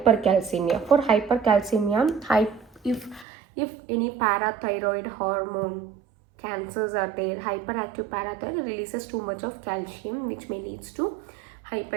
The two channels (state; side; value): drops out; left; at 3.2 s